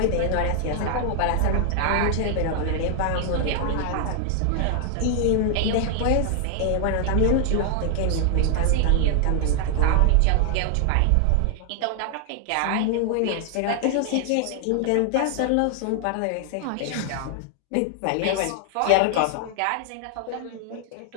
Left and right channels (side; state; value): both; different; correlation 0.00